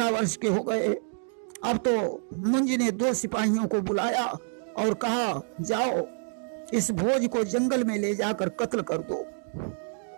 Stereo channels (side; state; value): left; silent; 60 dB below the other